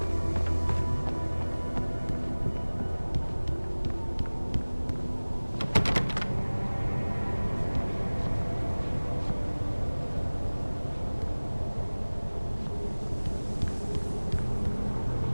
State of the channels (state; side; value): inverted; both; correlation -1.00